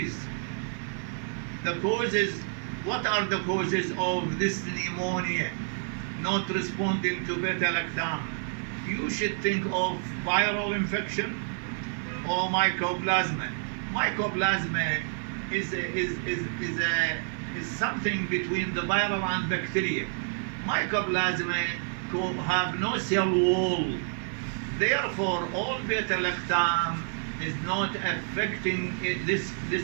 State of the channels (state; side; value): silent; left; 56 dB below the other